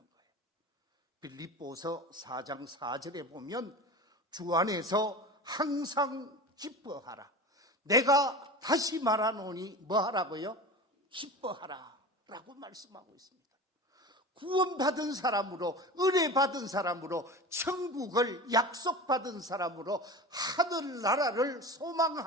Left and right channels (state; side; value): normal; both; correlation 0.31